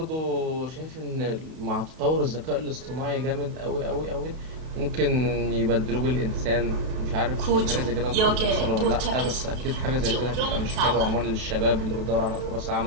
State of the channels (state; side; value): late; left; 32 ms